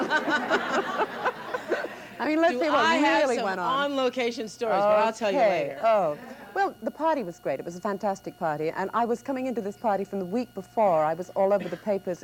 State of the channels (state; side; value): identical; both; correlation 1.00